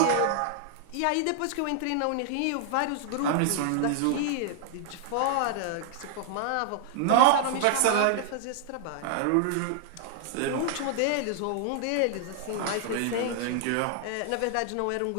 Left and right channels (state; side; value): different; both; correlation 0.00